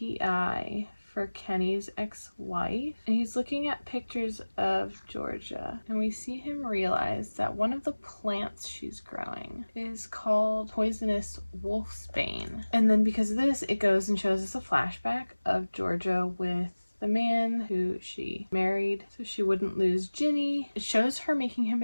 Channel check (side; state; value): both; inverted; correlation -1.00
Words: for Kenny's ex-wife, and he's looking at pictures of Georgia, and we see him realize that one of the plants she's growing is called poisonous wolfsbane. And then because of this, it goes and shows us a flashback of Georgia with the man who she married so she wouldn't lose Ginny. It shows her making him